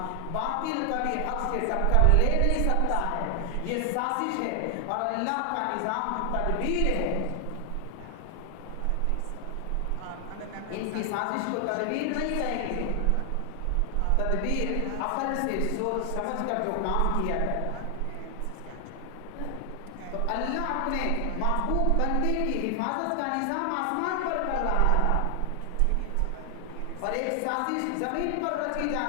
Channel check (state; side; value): different; both; correlation 0.00